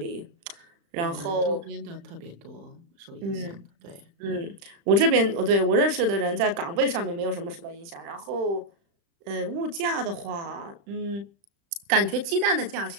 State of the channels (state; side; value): late; left; 35 ms